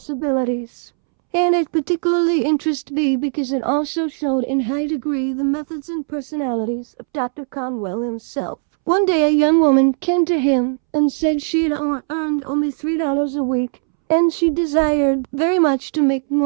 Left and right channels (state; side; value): silent; left; 67 dB below the other